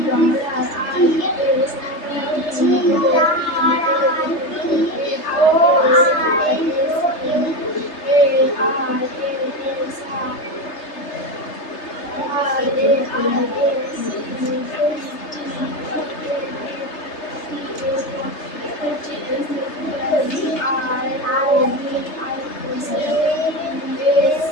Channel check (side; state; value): right; late; 3.3 ms